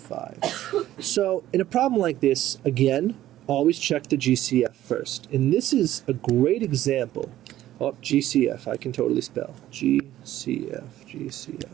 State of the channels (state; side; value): quieter; left; 13.6 dB